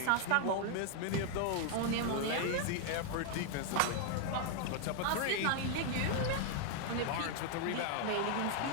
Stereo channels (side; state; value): both; different; correlation 0.00